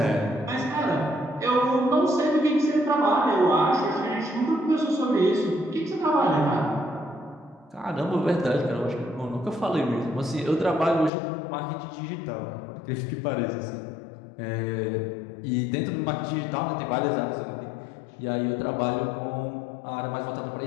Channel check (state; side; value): drops out; right; at 11.1 s